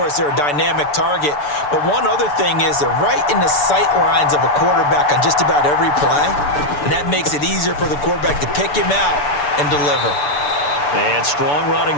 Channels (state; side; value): late; right; 6.9 ms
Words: they're a dynamic target. But one other thing is they're right in the sight lines of a quarterback on just about every play, and that makes it easier for the quarterback to pick him out and deliver. And strong running